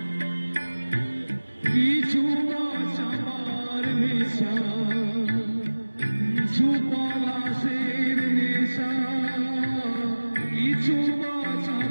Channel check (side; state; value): both; inverted; correlation -1.00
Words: কিছু চাপার নেশা, কিছু পলাশের নেশা, কিছু